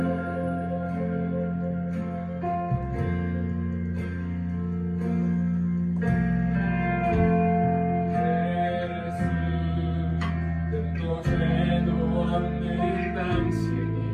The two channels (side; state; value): both; identical; correlation 1.00